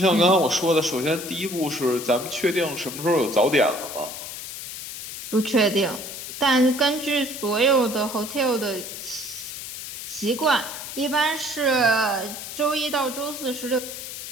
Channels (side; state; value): left; noise; hiss, 9 dB below the sound